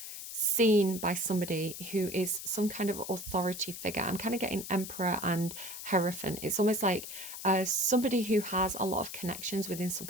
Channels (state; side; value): noise; left; hiss, 9 dB below the sound